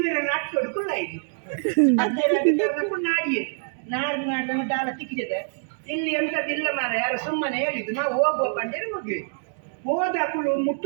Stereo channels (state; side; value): silent; left; digital silence